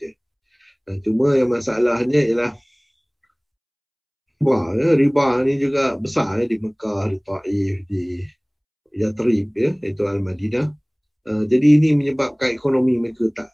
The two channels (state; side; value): identical; both; correlation 1.00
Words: Cuma yang masalahnya ialah riba ni juga besar di Mekah, di Taif, di Yathrib, iaitu Al-Madinah. Jadi ini menyebabkan ekonomi mereka